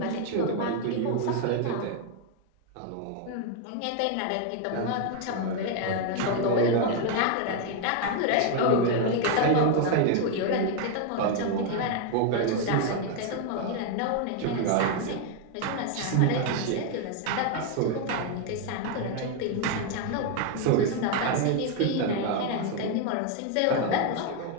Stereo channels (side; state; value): both; different; correlation 0.00